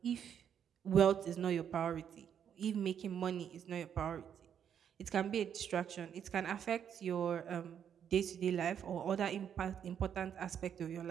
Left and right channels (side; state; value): left; quieter; 8.6 dB